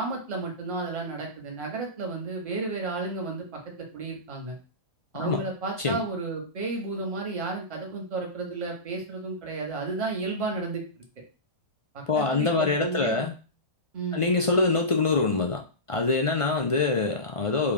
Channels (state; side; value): late; right; 1.5 ms